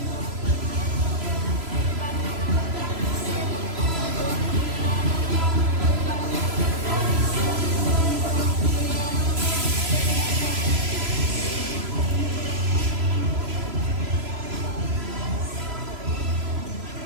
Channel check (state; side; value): late; left; 3.0 ms